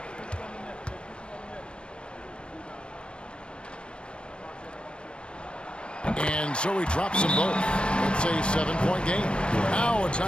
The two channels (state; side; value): late; right; 0.057 ms